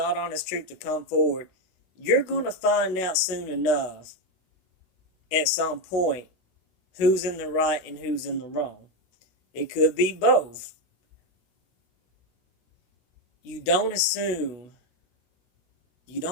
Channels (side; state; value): right; late; 16 ms